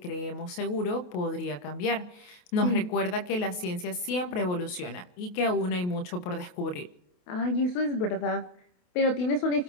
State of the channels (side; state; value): right; late; 28 ms